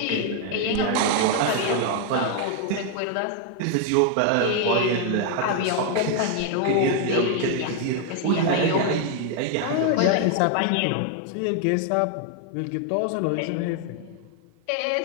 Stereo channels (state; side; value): different; both; correlation 0.00